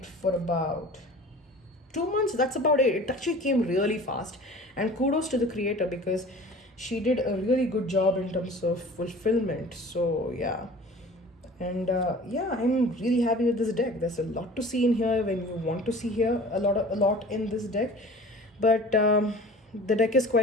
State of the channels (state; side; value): normal; both; correlation 0.43